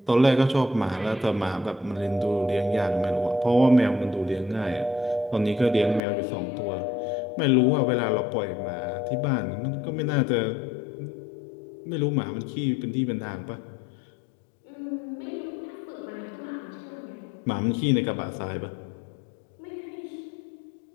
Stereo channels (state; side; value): drops out; right; at 6.0 s